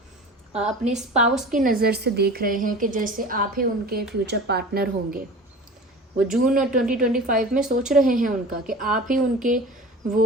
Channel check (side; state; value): both; normal; correlation 0.37